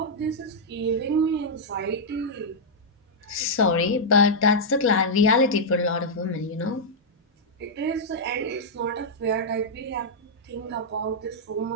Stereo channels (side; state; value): both; normal; correlation -0.06